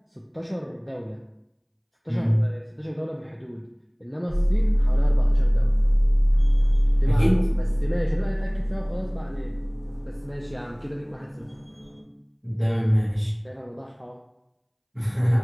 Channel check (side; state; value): both; identical; correlation 1.00